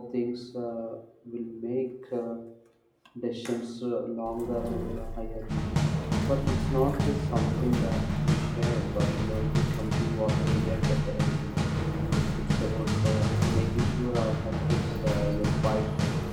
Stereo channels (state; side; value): identical; both; correlation 1.00